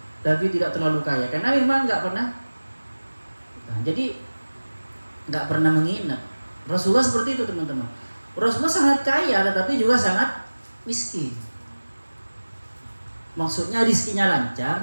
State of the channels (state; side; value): inverted; both; correlation -1.00